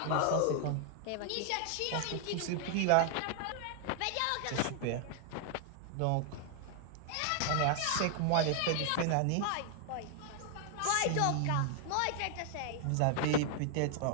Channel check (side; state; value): both; different; correlation 0.00